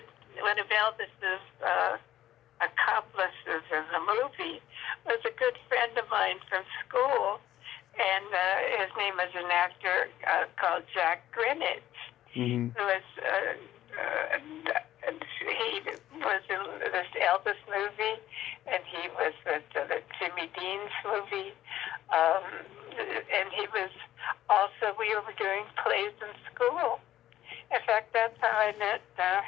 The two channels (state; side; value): quieter; right; 12.9 dB